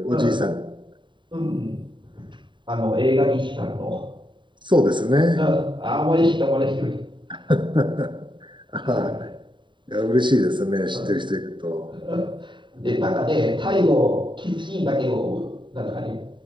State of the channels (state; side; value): late; left; 0.23 ms